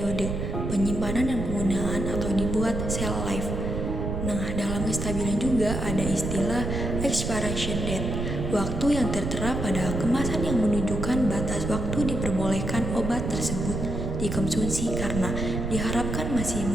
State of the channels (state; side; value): noise; right; rumble, 3 dB below the sound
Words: penyimpanan dan penggunaan atau dibuat shelf life. Nah, dalam kestabilan juga ada istilah expiration date, waktu yang tertera pada kemasan yang menunjukkan batas waktu diperbolehkan obat tersebut dikonsumsi karena diharapkan masih